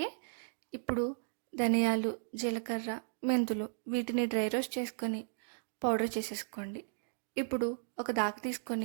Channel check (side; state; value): left; silent; digital silence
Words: ఇప్పుడు ధనియాలు, జీలకర్ర, మెంతులు వీటిని డ్రై రోస్ట్ చేసుకొని పౌడర్ చేసేసుకోండి. ఇప్పుడు ఒక దాక